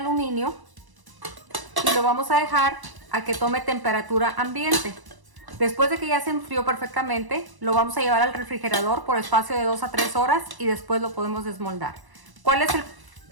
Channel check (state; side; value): late; left; 1.0 ms